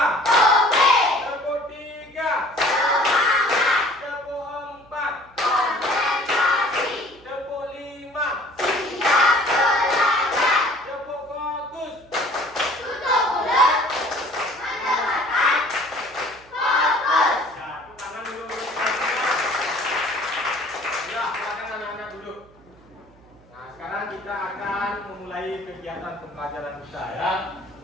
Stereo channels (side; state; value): right; noise; hum, 28 dB below the sound